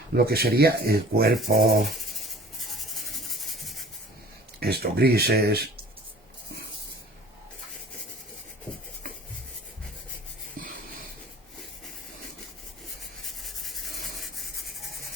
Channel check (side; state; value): both; normal; correlation 0.46